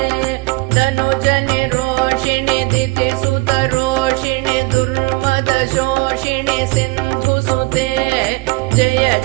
तनुजनि रोषिणि दितिसुतरोषिणि दुर्मदशोषिणि सिन्धुसुते जय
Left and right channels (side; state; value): left; quieter; 24.4 dB